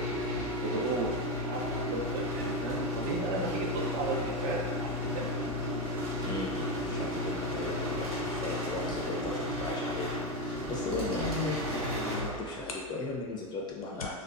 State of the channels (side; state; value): both; normal; correlation 0.12